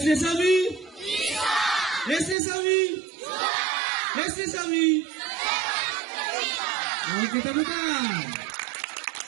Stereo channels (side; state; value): left; drops out; at 2.4 s